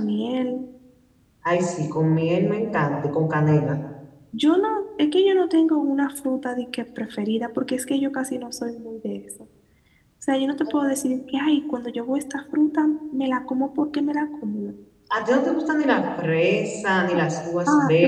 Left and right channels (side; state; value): both; identical; correlation 1.00